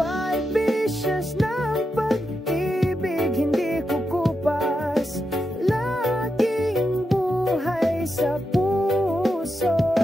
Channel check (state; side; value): normal; both; correlation 0.86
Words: ng pag-ibig hindi kukupas, laging buhay sa